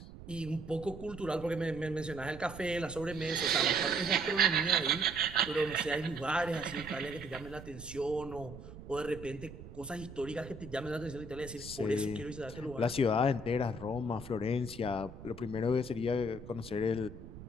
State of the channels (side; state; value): right; noise; rumble, 14 dB below the sound